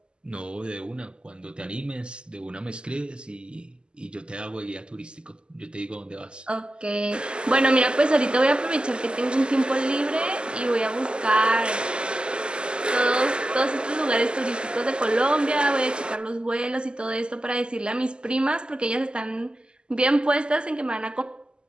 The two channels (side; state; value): left; late; 0.049 ms